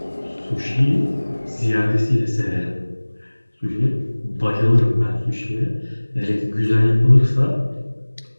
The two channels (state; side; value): inverted; both; correlation -1.00